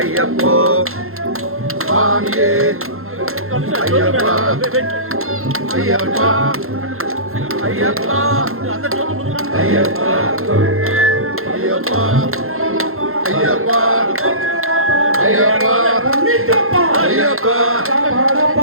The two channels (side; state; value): left; late; 0.62 ms